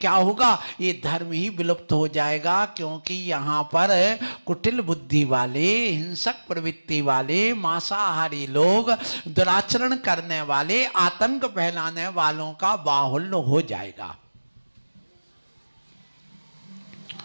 होगा, ये धर्म ही विलुप्त हो जाएगा। क्योंकि यहाँ पर कुटिल बुद्धि वाले, हिंसक प्रवृत्ति वाले, मांसाहारी लोग, दुराचरण करने वाले, आतंक फैलाने वालों का बाहुल्य हो जाएगा।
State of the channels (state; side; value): inverted; both; correlation -1.00